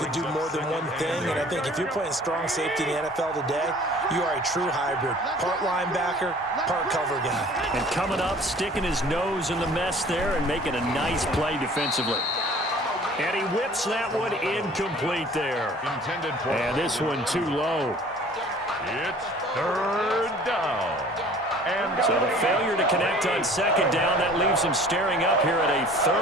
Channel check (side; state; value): both; normal; correlation 0.49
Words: do more than one thing. And I think if you're playing strong safety in the NFL today, you are a true hybrid. Part linebacker, part cover guy. And coming up, sticking his nose in the mess there and making a nice play defensively. And he whips that one incomplete there. Intended for. And this one too low. It's 3rd down. And so the failure to connect on 2nd down, that leaves him staring up here at a